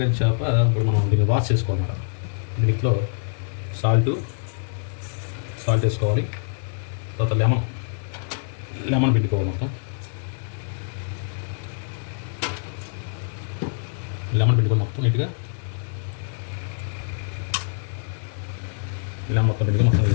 చేప ఇప్పుడు మనం దీన్ని వాష్ చేసుకోవాలి. దీంట్లో సాల్ట్ వేసుకోవాలి. తర్వాత లెమన్ పిండుకోవాలి. మొత్తం నీట్గా లెమన్ మొత్తం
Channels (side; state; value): right; silent; digital silence